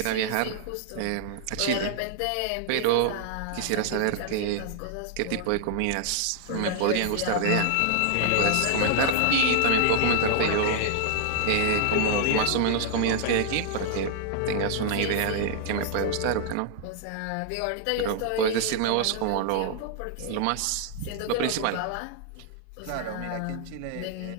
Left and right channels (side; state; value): both; different; correlation 0.00